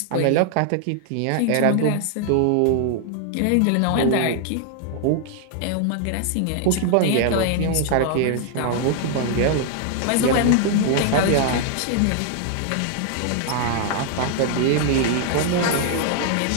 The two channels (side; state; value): both; different; correlation 0.00